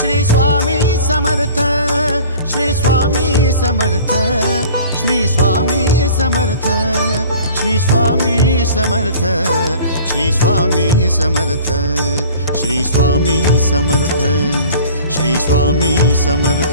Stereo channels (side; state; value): both; inverted; correlation -0.45